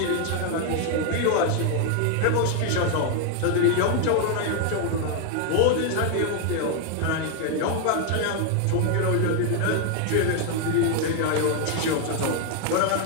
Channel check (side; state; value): both; different; correlation 0.00